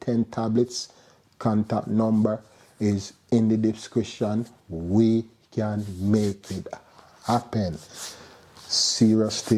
10 tablets, contact number is in the description. We can make it happen. Serious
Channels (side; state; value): both; identical; correlation 1.00